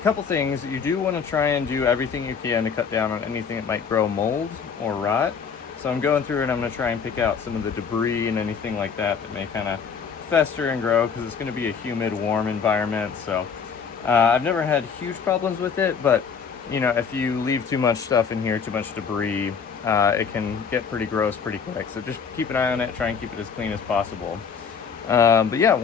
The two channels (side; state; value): right; quieter; 6.3 dB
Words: Couple things, you do want to try and do everything you can to cut down on anything that might grow mold or rot. So I'm going through and I'm going to try and pick out some of the debris and anything like that that may kind of fester and grow, because it's going to be a humid, warm environment. So I've never had huge problems with it, but you know, if you leave too much stuff in here, too much debris, it can get pretty gross pretty quick. So just keep an eye on it, try and keep it as clean as possible. But yeah,